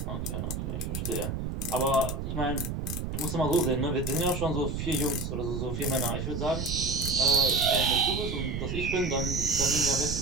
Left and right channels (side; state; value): right; noise; rumble, 3 dB below the sound